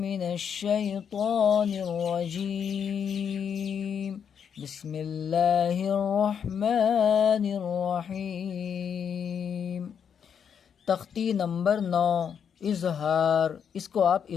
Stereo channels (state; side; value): quieter; right; 7.6 dB